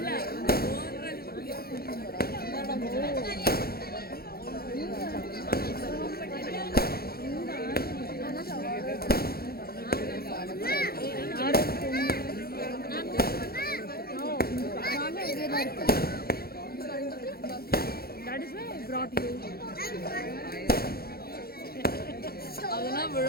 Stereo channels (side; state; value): right; late; 0.44 ms